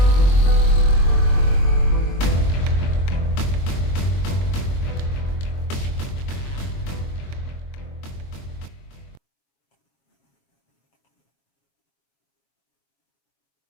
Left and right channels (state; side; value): late; right; 22 ms